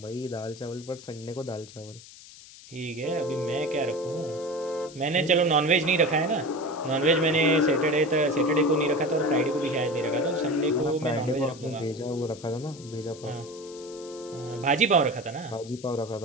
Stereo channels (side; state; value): left; noise; hiss, 19 dB below the sound